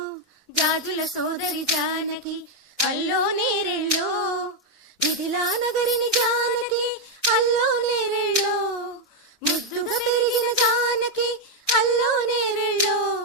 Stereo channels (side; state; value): both; normal; correlation 0.02